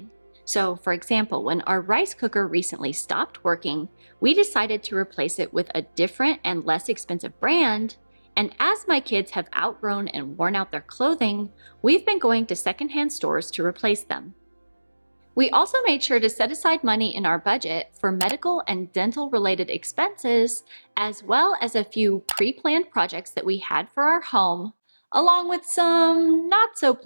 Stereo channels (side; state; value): both; inverted; correlation -1.00